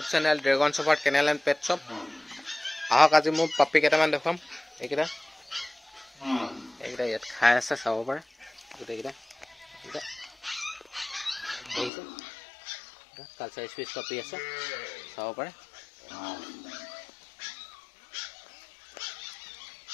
channel dragon shopper kennel and pet shop आहक आज मोर पापी केटामान देखाम एकिटा यात खाइ आछे चाब पारे गोटेकिटा कालचार स्पेस पापी आछे चाब पारे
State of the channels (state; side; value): drops out; right; at 11.9 s